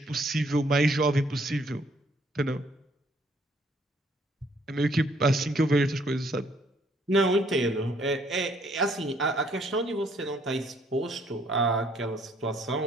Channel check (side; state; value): both; normal; correlation 0.65